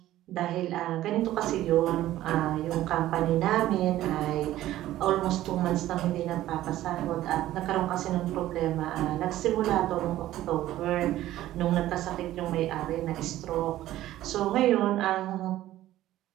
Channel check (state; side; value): quieter; left; 14.3 dB